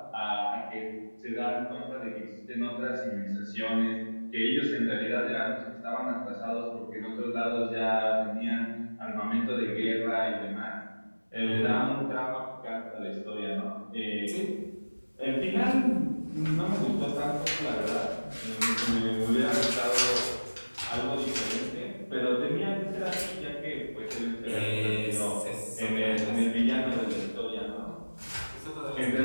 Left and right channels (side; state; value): both; inverted; correlation -1.00